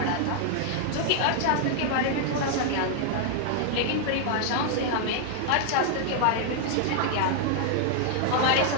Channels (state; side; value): different; both; correlation 0.00